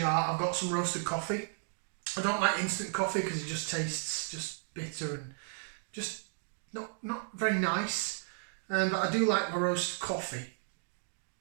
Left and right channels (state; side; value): silent; left; digital silence